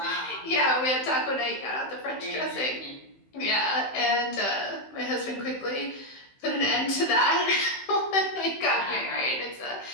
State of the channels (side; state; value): right; late; 15 ms